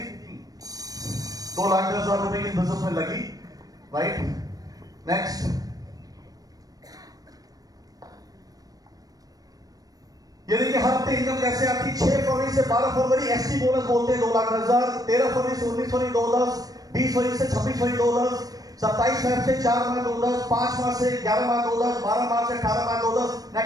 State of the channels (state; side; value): late; left; 0.18 ms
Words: 2,10,000 रुपए की बिजनेस में लगी। राइट। नेक्स्ट, ये देखिए हर हफ्ते इनकम कैसे आती। 6 फरवरी से 12 फरवरी एसटी बोनस बोलते हैं 2,10,000, 13 फरवरी से 19 फरवरी 2,10,000, 20 फरवरी से 26 फरवरी 2,10,000, 27 फरवरी से 4 मार्च 2,10,000, 5 मार्च से 11 मार्च 2,10,000, 12 मार्च से 18 मार्च 2,10,000।